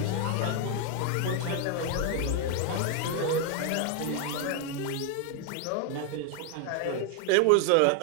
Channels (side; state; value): both; different; correlation 0.01